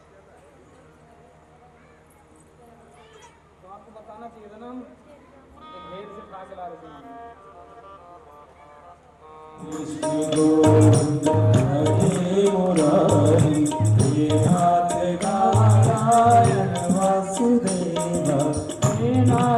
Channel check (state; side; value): identical; both; correlation 1.00